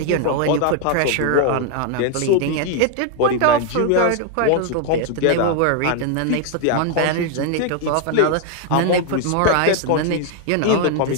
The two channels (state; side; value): different; both; correlation 0.00